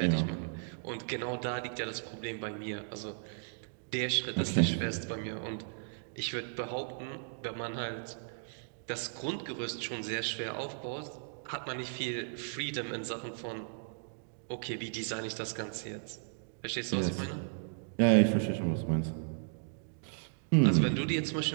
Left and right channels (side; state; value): left; silent; digital silence